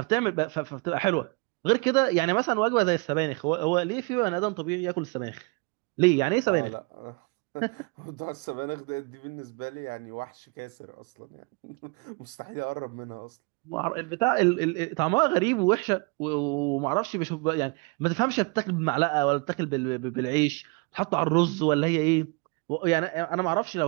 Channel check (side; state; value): left; quieter; 30.0 dB